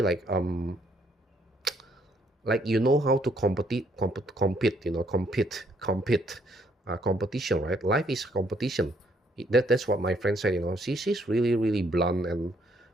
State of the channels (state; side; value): normal; both; correlation 0.69